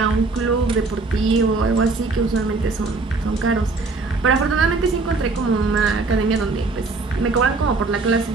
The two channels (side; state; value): left; quieter; 3.8 dB